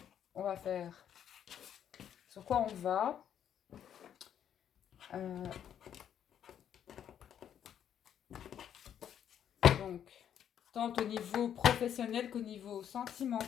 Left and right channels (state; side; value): quieter; right; 9.4 dB